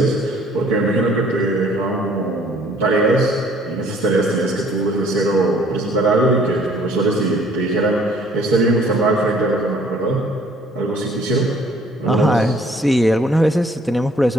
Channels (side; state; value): both; normal; correlation 0.59